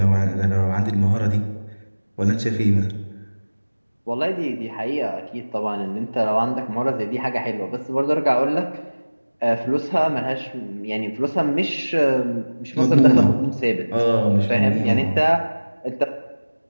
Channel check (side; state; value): both; inverted; correlation -1.00